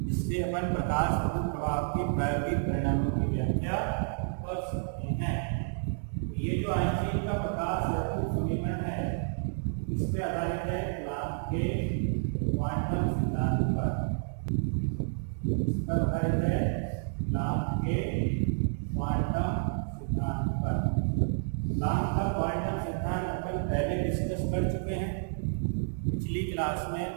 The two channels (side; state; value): left; silent; 58 dB below the other